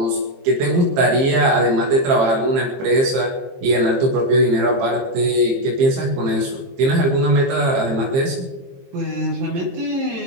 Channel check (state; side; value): late; left; 22 ms